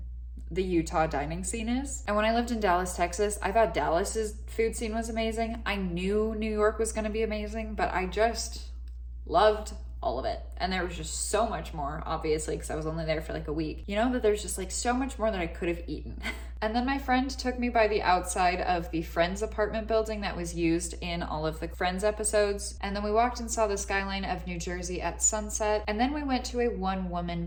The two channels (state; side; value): identical; both; correlation 1.00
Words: the Utah dining scene is. And when I lived in Dallas, Texas, I thought Dallas's food scene was amazing. I knew New York was going to be amazing, but I just loved all of it. And there was just so much more, obviously, because I was only there for like a week. You know, that there's just like so much more that I could have eaten. And then my friend took me by the outside of the Friends apartment building that was used in all of the Friends episodes. And then we walked and saw the skyline of New Jersey at sunset. And then we went to a